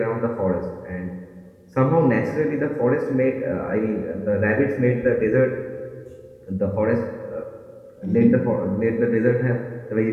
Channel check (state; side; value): identical; both; correlation 1.00